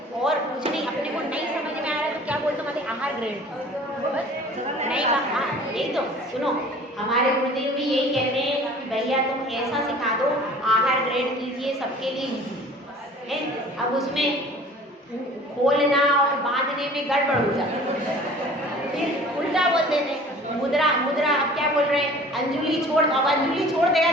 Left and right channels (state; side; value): normal; both; correlation 0.47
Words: और कुछ नहीं, अपने को नहीं समझ में आ रहा तो क्या बोलते हैं, आहार ग्रहण बस नहीं। हाँ यही तो सुनो, हमारे गुरुदेव भी यही कहते हैं कि भैया तुम ऐसा सिखा दो, आहार ग्रहण कीजिए, सबके लिए ईजी है। अब उसमें खोलना और बांधने में गड़बड़ हो जाती है, फिर उल्टा बोल देते हैं, मुद्रा अब क्या बोल रहे हैं, अंजलि छोड़, अब अंजलि छोड़ देगा